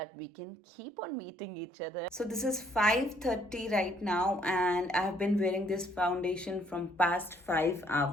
we can keep on meeting each other. So this is 5:30 right now and I have been wearing this foundation from past 5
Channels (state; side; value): normal; both; correlation 0.66